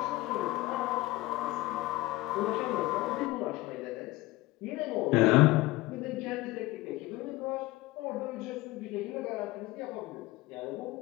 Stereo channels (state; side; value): quieter; right; 19.1 dB